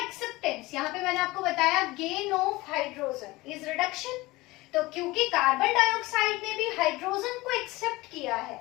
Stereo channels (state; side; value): quieter; right; 20.7 dB